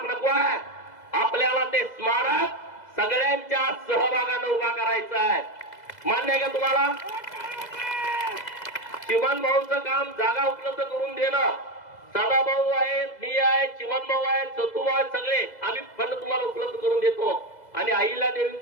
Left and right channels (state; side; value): late; right; 2.0 ms